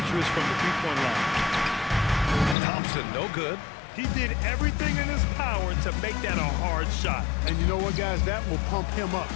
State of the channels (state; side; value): drops out; right; at 2.6 s